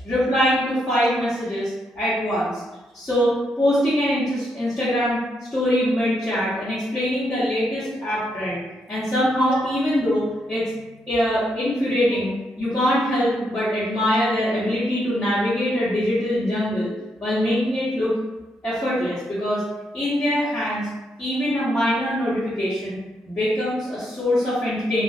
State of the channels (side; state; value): both; normal; correlation 0.78